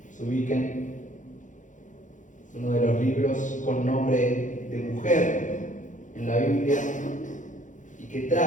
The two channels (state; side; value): late; right; 0.37 ms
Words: ubiquen, es uno de los libros con nombre de mujer en la Biblia y que